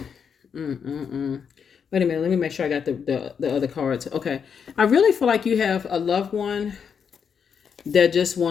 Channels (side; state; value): right; quieter; 6.9 dB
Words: minute, let me make sure I got the other cards. Okay. I really feel like you have a loved one that just